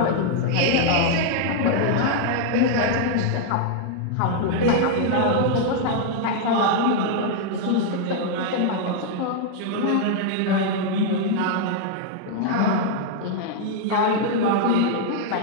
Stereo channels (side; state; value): both; different; correlation 0.00